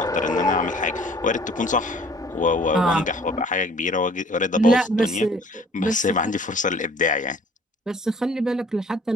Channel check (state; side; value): normal; both; correlation 0.54